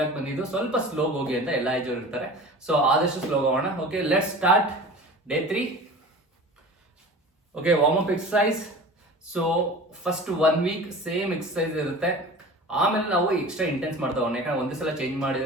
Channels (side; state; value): both; normal; correlation 0.38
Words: ಬಂದಿದ್ದು ಸ್ವಲ್ಪ ಸ್ಲೋ ಹೋಗಿ ಅಂತ ಎಲ್ಲ ಏಜ್ ಇರ್ತಾರೆ. ಸೊ ಆದಷ್ಟು ಸ್ಲೋ ಹೋಗೋಣ. Okay, let's start day 3. Okay, warm up exercise. So first 1 week same exercise ಇರುತ್ತೆ. ಆಮೇಲೆ ನಾವು ಎಕ್ಸ್ಟ್ರಾ ಇಂಟೆನ್ಸ್ ಮಾಡ್ತಾ ಹೋಗೋಣ. ಯಾಕಂದ್ರೆ ಒಂದೇ ಸಲ ಚೇಂಜ್